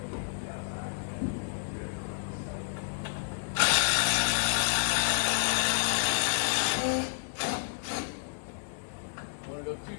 Want to go too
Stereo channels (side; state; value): right; silent; 58 dB below the other